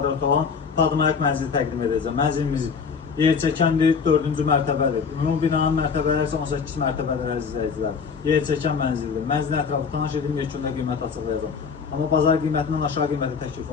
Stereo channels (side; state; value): right; quieter; 5.8 dB